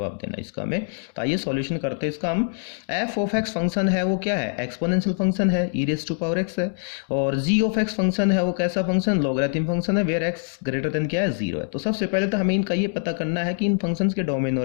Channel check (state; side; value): silent; right; digital silence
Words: देना इसका हमें। तो आइए सॉल्यूशन करते हैं इसका हम। f ऑफ x फंक्शन है वो क्या है, एक्सपोनेंशियल फंक्शन है, e⁻x है, और g ऑफ x फंक्शन है वो कैसा फंक्शन, लॉगरिथम फंक्शन है, वेयर x ग्रेटर देन क्या है, 0 है। तो सबसे पहले तो हमें इनका ये पता करना है कि इन फंक्शंस के डोमेन